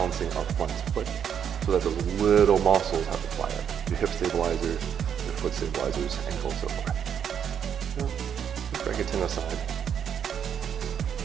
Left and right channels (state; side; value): quieter; left; 8.3 dB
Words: our front foot so that those little muscles have to fire. Your hip stabilizers, your foot stabilizers, ankle, and so forth. Just break it 10 aside.